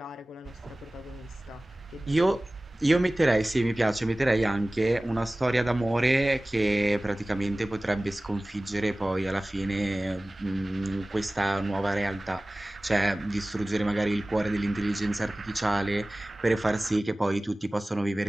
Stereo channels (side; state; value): both; normal; correlation 0.98